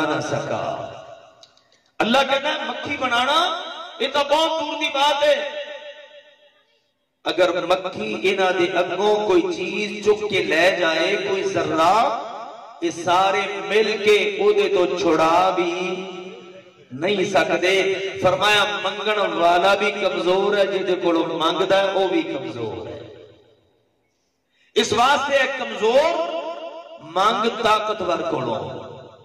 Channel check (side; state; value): both; identical; correlation 1.00